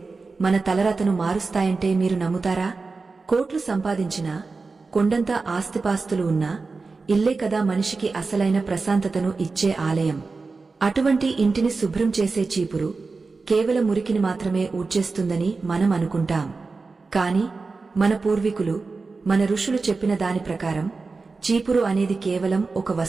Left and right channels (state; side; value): quieter; left; 4.1 dB